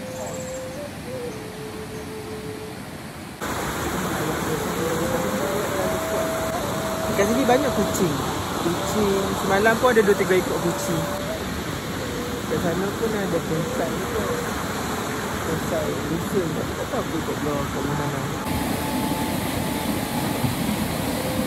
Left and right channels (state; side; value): identical; both; correlation 1.00